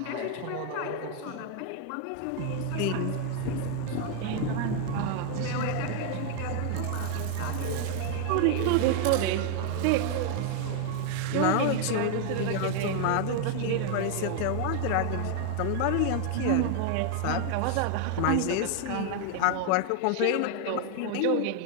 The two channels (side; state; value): both; different; correlation 0.00